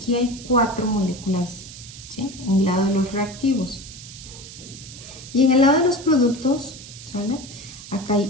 hay 4 moléculas, ¿sí?, en el lado de los reactivos. Y en el lado de los productos, ¿sale?, acá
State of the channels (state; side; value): noise; right; hiss, 15 dB below the sound